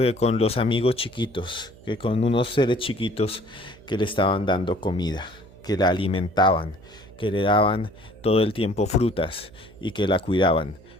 con los amigos chiquitos, que con unos seres chiquitos que le estaban dando comida, que la alimentaban, que le daban todo el tiempo frutas y que la cuidaban.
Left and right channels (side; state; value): right; noise; hum, 23 dB below the sound